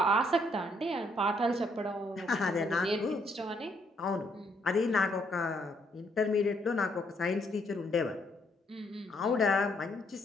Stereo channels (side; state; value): both; normal; correlation 0.71